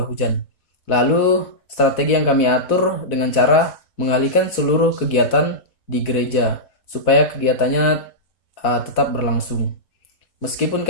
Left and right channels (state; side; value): late; right; 4.0 ms